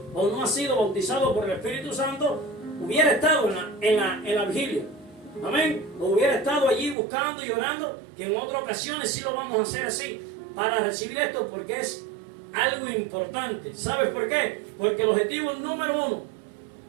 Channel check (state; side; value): drops out; left; at 7.0 s